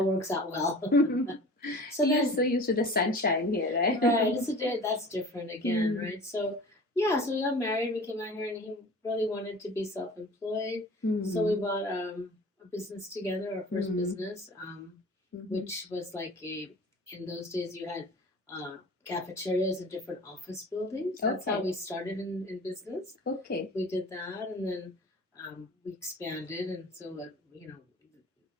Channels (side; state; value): both; normal; correlation 0.41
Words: works out well. So you're so used to the sunshine here, right? Right. That's different again, right? So yeah, so we got married. We came out here, and he really wanted to be self-employed. So we bought a business together, our first business, which was like in those days you had cafeterias in different office buildings. That's how we started in business. Okay. We did that, and then we expanded, and so the